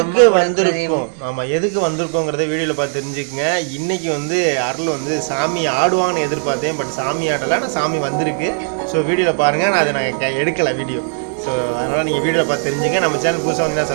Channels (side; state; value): left; silent; 65 dB below the other